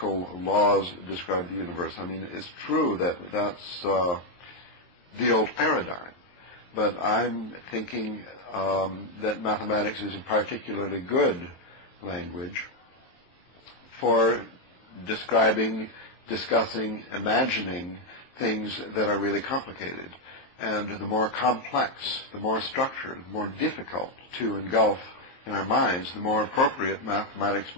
laws describe the universe. I mean, it's true that that's the old paradigm. But I'm thinking that mathematics is a particularly good language for describing, discussing, imagining things that are really complicated. And the more complex, the more structured, the more difficult to engulf in our minds, the more appropriate mathematics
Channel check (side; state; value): right; late; 23 ms